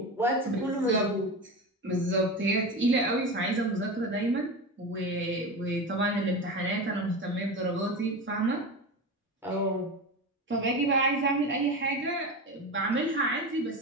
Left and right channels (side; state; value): both; normal; correlation 0.24